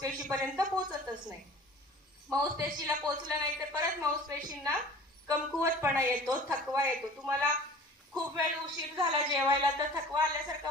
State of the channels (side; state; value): both; normal; correlation 0.44